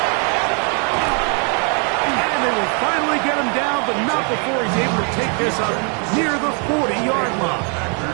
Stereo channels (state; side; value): quieter; left; 38.7 dB